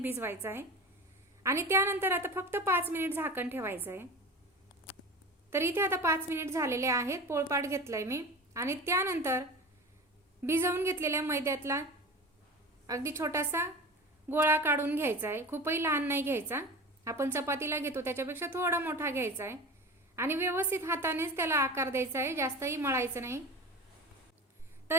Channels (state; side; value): normal; both; correlation 0.32